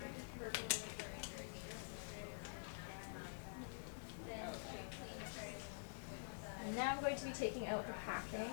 And now I'm going to be taking out the packing.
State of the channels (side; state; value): right; silent; digital silence